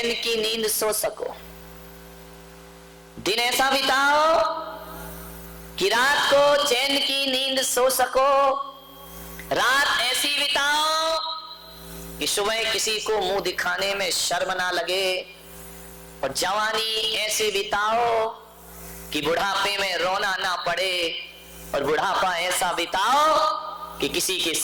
की नींद सो सको। दिन ऐसा बिताओ कि रात को चैन की नींद सो सको। रात ऐसी बिताओ कि सुबह किसी को मुंह दिखाने में शर्म ना लगे। और जवानी ऐसे बिताओ कि बुढ़ापे में रोना ना पड़े। और बुढ़ापा ऐसा बिताओ कि किसी के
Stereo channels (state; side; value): identical; both; correlation 1.00